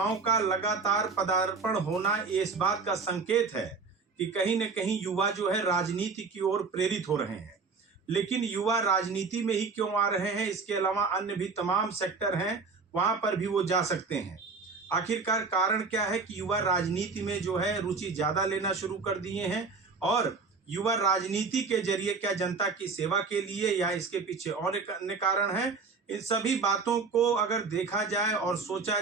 का लगातार पदार्पण होना इस बात का संकेत है कि कहीं न कहीं युवा जो है राजनीति की ओर प्रेरित हो रहे हैं। लेकिन युवा राजनीति में ही क्यों आ रहे हैं, इसके अलावा अन्य भी तमाम सेक्टर हैं, वहां पर भी वो जा सकते हैं। आखिरकार कारण क्या है कि युवा राजनीति में जो है रुचि ज्यादा लेना शुरू कर दिए हैं, और युवा राजनीति के जरिए क्या जनता की सेवा के लिए या इसके पीछे और एक अन्य कारण है। इन सभी बातों को अगर देखा जाए और सोचा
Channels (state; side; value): quieter; left; 4.6 dB